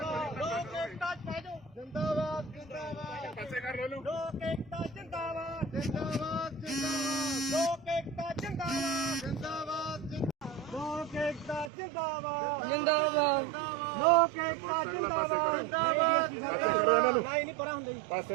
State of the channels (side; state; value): left; drops out; at 11.7 s